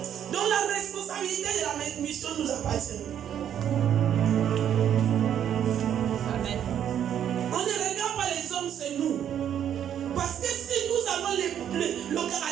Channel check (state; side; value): quieter; left; 9.7 dB